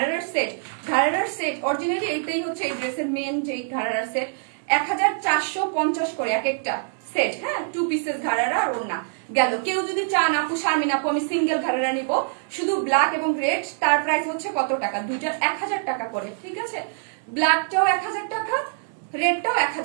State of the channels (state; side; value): silent; left; 62 dB below the other